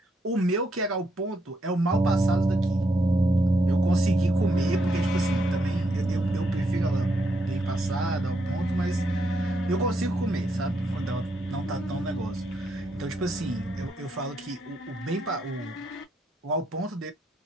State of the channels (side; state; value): both; normal; correlation 0.78